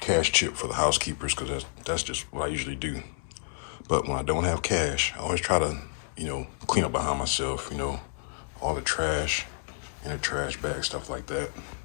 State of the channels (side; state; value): right; silent; digital silence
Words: tip for the housekeepers because that's just what I usually do. But when I don't have cash, I always try to, clean up behind myself, all the trash in a trash bag, stuff like that,